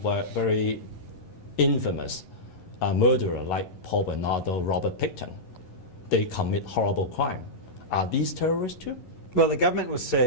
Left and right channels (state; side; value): late; right; 11 ms